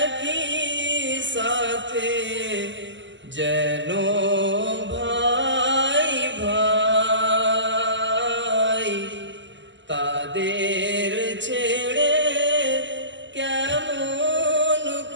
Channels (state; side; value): late; left; 0.54 ms